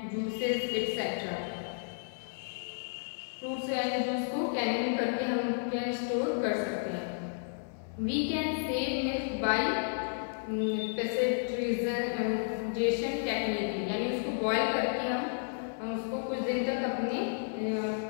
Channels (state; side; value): silent; right; 56 dB below the other